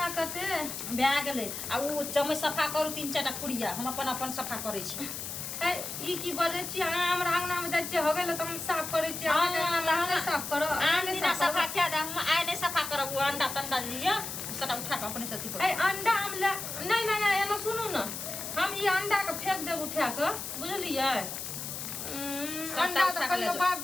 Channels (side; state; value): left; noise; hiss, 6 dB below the sound